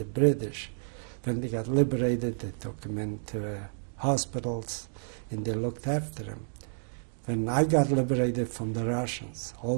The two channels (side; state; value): left; silent; digital silence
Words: British. When they got liberated, they took them into hospitals and they looked after them. When I got liberated from the Russians, all